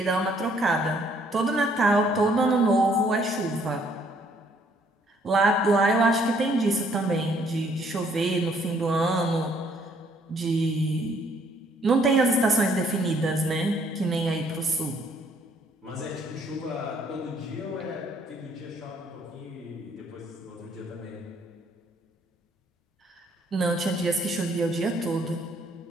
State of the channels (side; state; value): both; normal; correlation 0.65